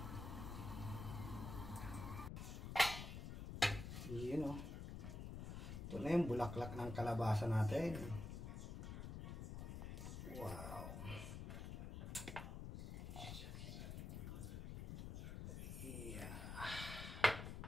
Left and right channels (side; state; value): left; noise; rumble, 6 dB below the sound